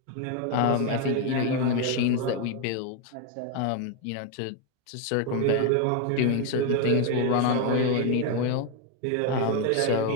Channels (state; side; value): different; both; correlation 0.01